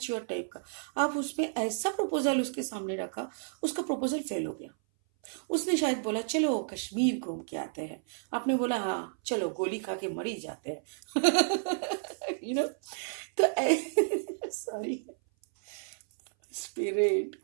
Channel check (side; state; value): left; silent; 57 dB below the other